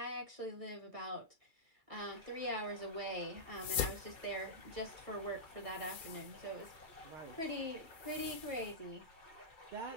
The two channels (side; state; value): left; late; 2.3 ms